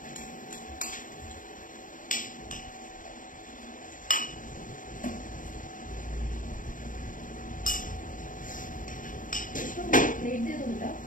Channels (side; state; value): right; late; 0.39 ms